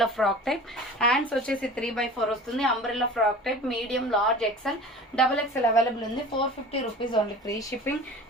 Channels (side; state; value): both; normal; correlation 0.39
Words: ఫ్రాక్ టైప్. హ్యాండ్స్ వచ్చేసి 3/4 వస్తుంది. Umbrella frock type medium large XL double XL available ఉంది. 450 rupees only, free shipping.